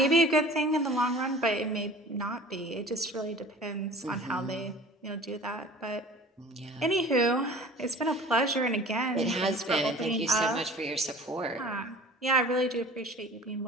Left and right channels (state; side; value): normal; both; correlation 0.44